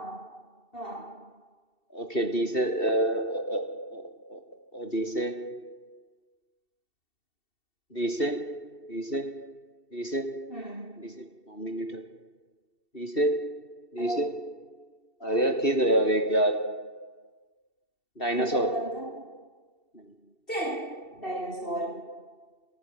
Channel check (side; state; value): right; late; 2.7 ms